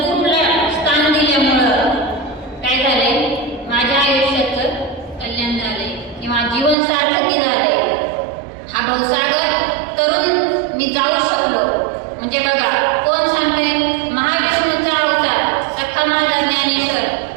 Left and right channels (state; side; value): drops out; left; at 6.8 s